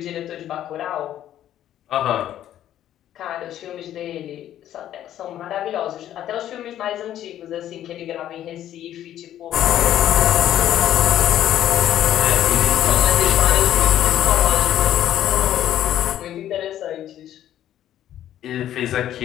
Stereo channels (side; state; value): right; quieter; 11.7 dB